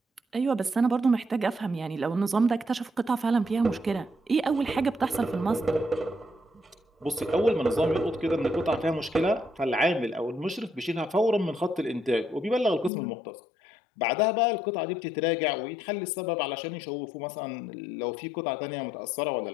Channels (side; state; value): right; drops out; at 12.9 s